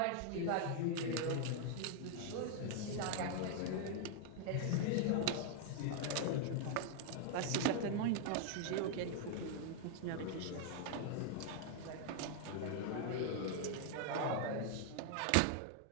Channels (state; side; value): different; both; correlation 0.00